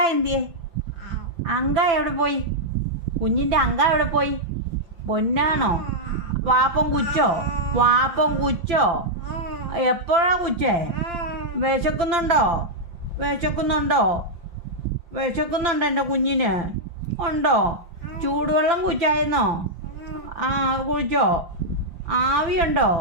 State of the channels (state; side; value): late; left; 5.9 ms